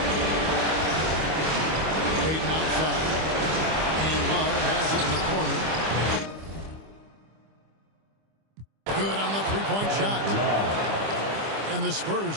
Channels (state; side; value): late; left; 25 ms